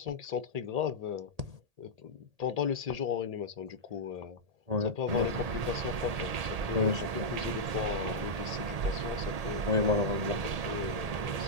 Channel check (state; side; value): late; left; 1.8 ms